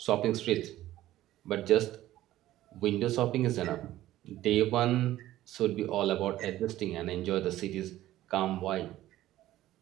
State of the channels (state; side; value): quieter; left; 14.7 dB